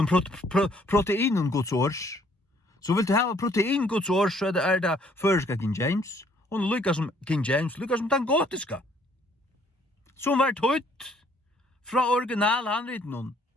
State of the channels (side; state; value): both; normal; correlation 0.63